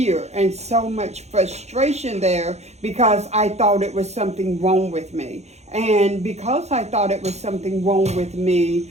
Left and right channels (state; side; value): late; left; 0.32 ms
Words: and so much frustration there because I thought it was something wrong with me. And because I thought it was something wrong with me,